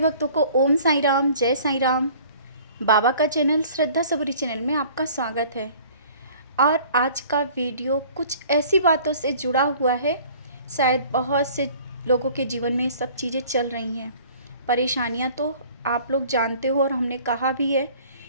को ओम साईं राम, जय साईं राम। बाबा का चैनल श्रद्धा सबूरी चैनल में आपका स्वागत है। और आज का वीडियो कुछ ऐसी बातों से जुड़ा हुआ है, शायद बहुत से लोगों के जीवन में सब चीज़ें चल रही हैं। परेशानियां तो आप लोग जानते हो और हमने कहा भी है,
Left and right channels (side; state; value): both; inverted; correlation -0.51